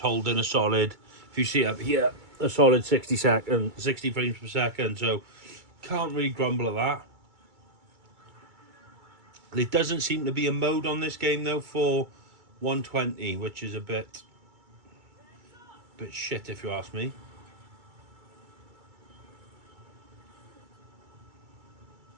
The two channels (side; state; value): left; late; 2.3 ms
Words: holding a solid, if you see up here, a solid 60 frames per second. So can't really grumble at that. There doesn't seem to be a mode on this game though for 120, which is a bit shit if you ask me.